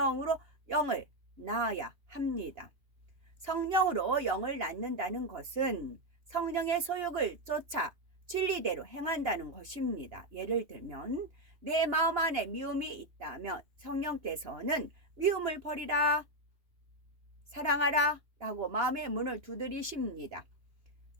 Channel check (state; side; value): late; left; 2.9 ms